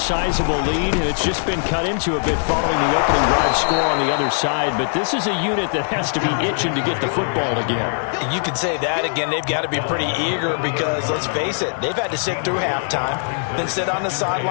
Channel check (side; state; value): right; silent; digital silence